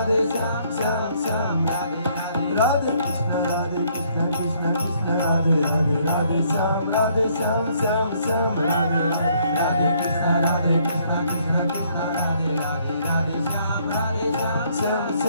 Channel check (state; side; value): inverted; both; correlation -0.66